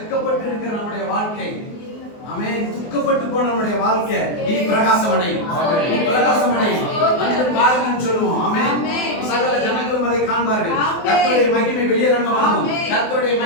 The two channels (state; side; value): late; right; 24 ms